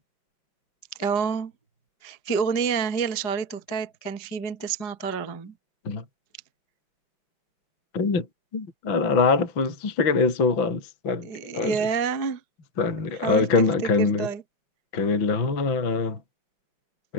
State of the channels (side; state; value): right; late; 4.8 ms